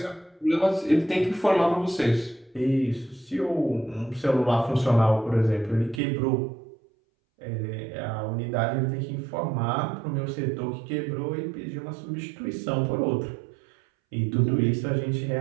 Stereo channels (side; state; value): left; drops out; at 6.0 s